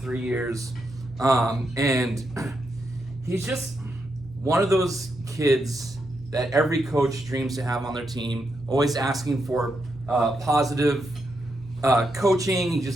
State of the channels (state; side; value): normal; both; correlation 0.82